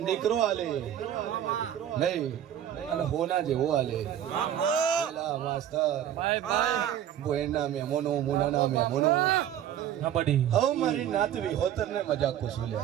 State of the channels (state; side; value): quieter; left; 10.6 dB